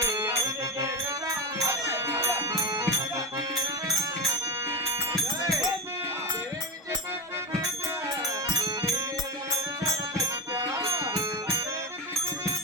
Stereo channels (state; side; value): normal; both; correlation 0.16